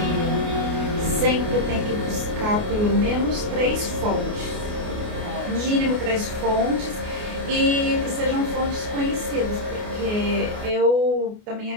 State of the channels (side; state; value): left; late; 28 ms